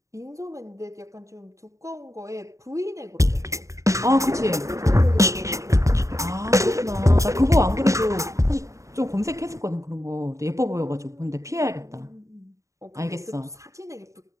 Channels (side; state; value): left; late; 0.15 ms